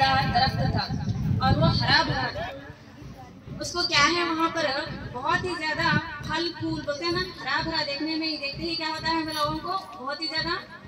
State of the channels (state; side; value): identical; both; correlation 1.00